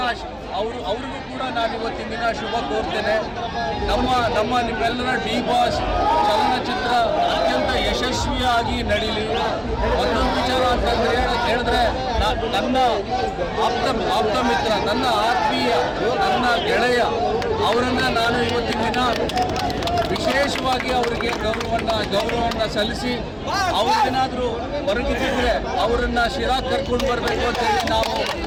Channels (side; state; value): both; identical; correlation 1.00